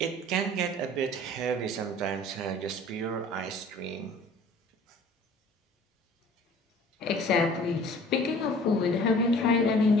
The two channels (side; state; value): both; normal; correlation 0.48